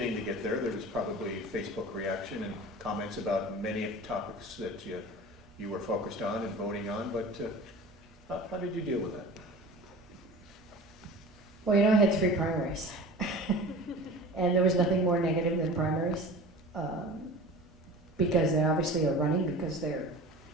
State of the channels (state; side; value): normal; both; correlation 0.38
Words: to get there. There was probably Facebook reaction and comments about many of the topics that you were focused on and voting on. But how did you deal with that? Well, I had 3 primaries. And there was nothing more negative than primaries, because they obviously are running because they're